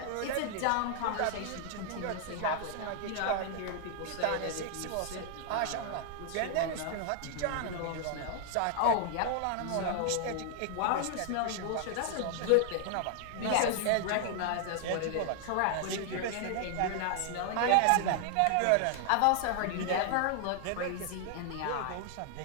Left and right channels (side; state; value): both; different; correlation 0.00